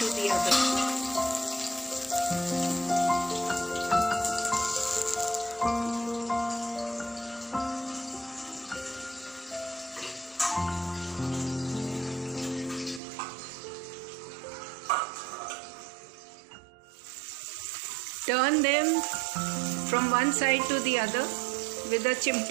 the other. Turn them from one side to the other with a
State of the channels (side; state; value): left; drops out; at 13.0 s